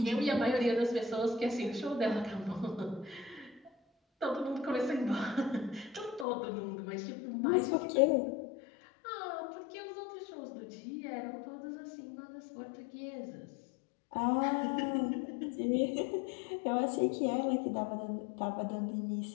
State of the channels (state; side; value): drops out; right; at 6.2 s